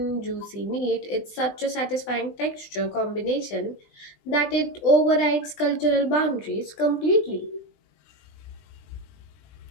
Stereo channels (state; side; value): late; right; 20 ms